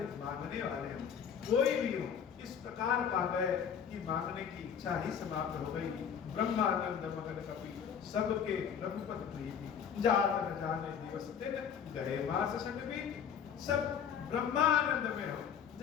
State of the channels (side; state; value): right; quieter; 7.7 dB